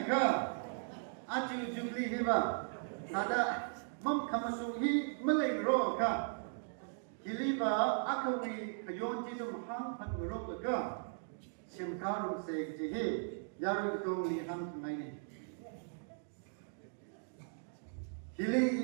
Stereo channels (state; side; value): silent; left; digital silence